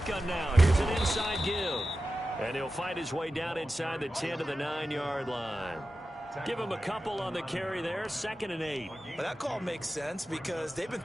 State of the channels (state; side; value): normal; both; correlation 0.93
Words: now, here's an inside give. And he'll fight his way down inside the 10 to the 9-yard line. Give him a couple on the carry there, 2nd and 8. Well, that call makes sense because they've been